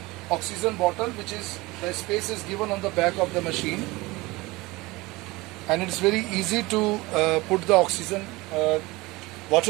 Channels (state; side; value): quieter; left; 21.8 dB